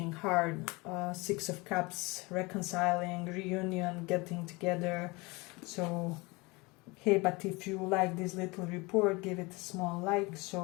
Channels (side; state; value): right; quieter; 25.3 dB